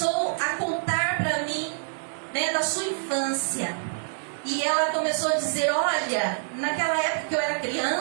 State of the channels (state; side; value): silent; left; digital silence